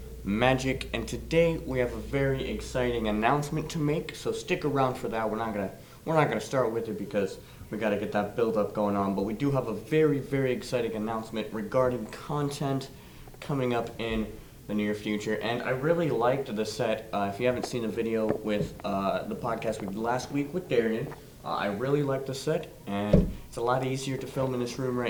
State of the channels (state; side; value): identical; both; correlation 1.00